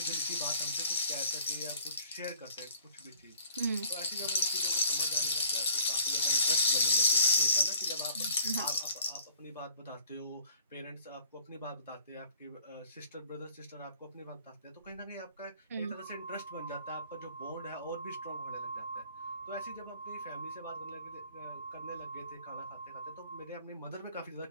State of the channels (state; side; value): inverted; both; correlation -0.54